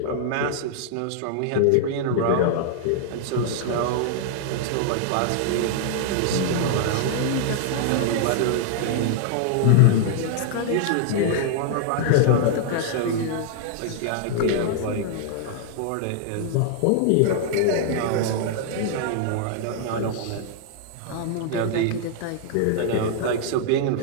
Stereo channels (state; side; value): different; both; correlation -0.01